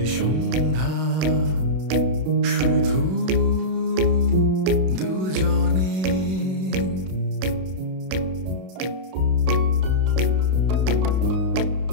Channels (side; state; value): left; late; 32 ms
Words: সন্ধ্যা, শুধু দুজনে।